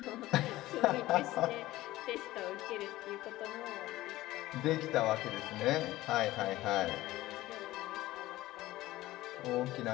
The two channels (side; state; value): right; quieter; 16.8 dB